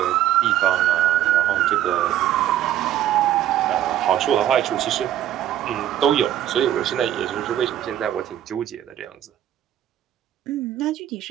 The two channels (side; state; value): left; quieter; 11.8 dB